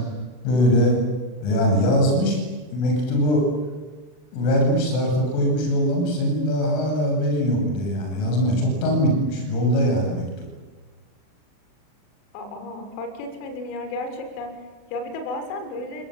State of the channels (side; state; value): right; late; 40 ms